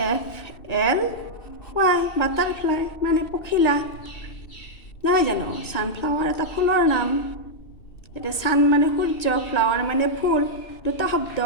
FLY butterfly মানে পখিলা নহয় জানো ছানফ্লাৱাৰ এটা ফুলৰ নাম এতিয়া ছান মানে সূৰ্য ফ্লাৱাৰ মানে ফুল দুটা শব্দ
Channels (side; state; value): right; late; 1.9 ms